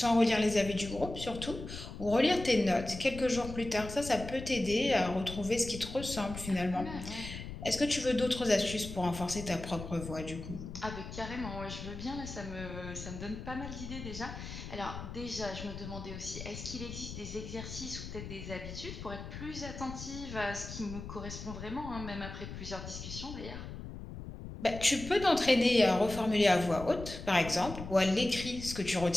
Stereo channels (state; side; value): noise; left; rumble, 10 dB below the sound